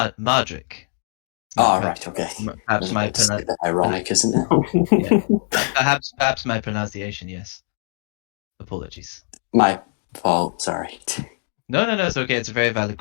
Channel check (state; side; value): silent; right; 57 dB below the other